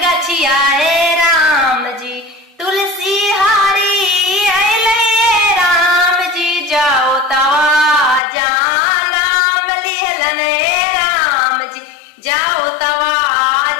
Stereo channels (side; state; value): right; drops out; at 8.2 s